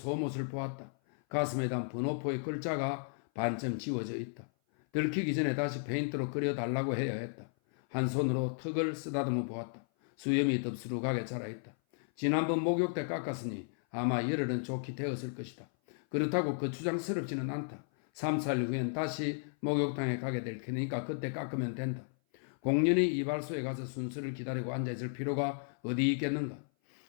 보았다. 가슴에 단 번호표의 글자가 반쯤 지워져 있다. 들키기 전에 다시 페인트로 그려달라고 해야 했다. 한 손으로 턱을 쓰다듬어 보았다. 수염이 덥수룩하게 자라있다. 지난번 목욕 때 깎았으니 아마 열흘은 좋게 되었을 것이다. 그렇다고 거추장스럽지는 않다. 3살 후엔 다시 목욕탕에 가게 될 테니까 그때 깎으면 된다. 공연히 이발소에 가서 순서를 기다리고 앉아있을 필요가 어디 있겠는가.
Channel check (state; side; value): silent; right; 55 dB below the other